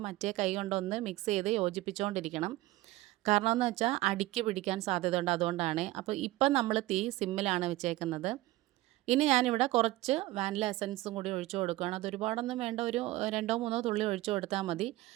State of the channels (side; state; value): left; quieter; 17.9 dB